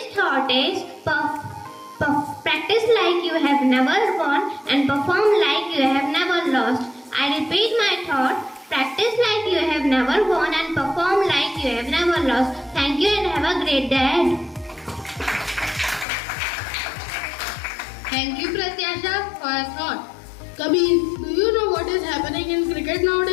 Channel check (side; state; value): right; drops out; at 16.1 s